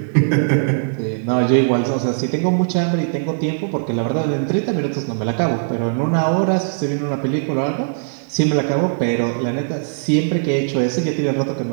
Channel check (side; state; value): left; silent; digital silence